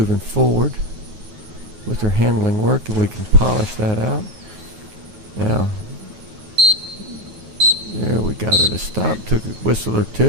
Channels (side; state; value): left; late; 9.4 ms